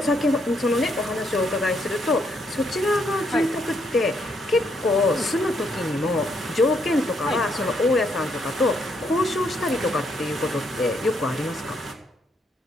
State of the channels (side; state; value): both; normal; correlation 0.74